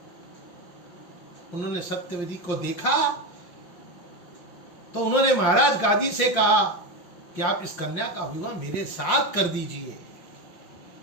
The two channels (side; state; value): right; late; 5.7 ms